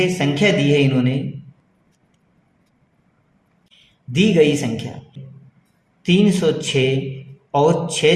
संख्या दी है। इन्होंने दी गई संख्या 306 और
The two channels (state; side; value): identical; both; correlation 1.00